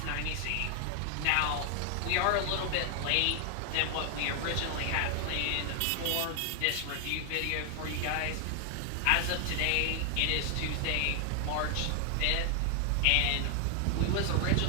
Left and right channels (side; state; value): both; different; correlation 0.00